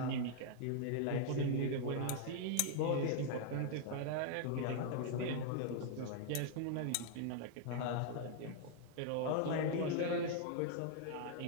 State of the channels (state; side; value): different; both; correlation -0.01